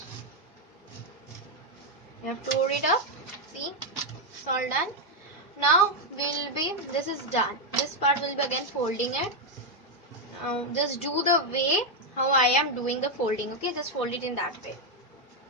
You have to hold it up. See, it's all done. Now this is done. This part will be again folding it. Now just do the way how I am doing the folding. Okay, just fold it in that way.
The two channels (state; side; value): normal; both; correlation 0.02